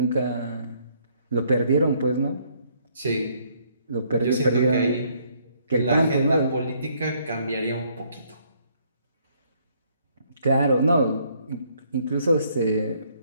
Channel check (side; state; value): both; inverted; correlation -0.67